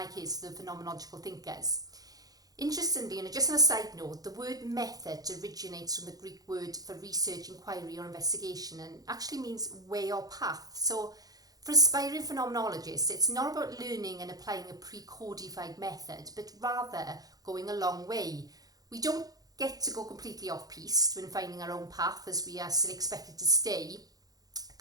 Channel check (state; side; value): late; left; 0.18 ms